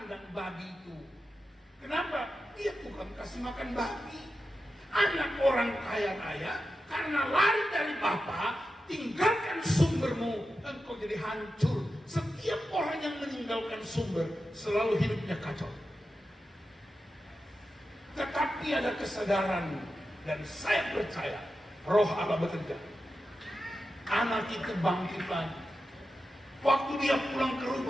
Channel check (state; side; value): normal; both; correlation 0.91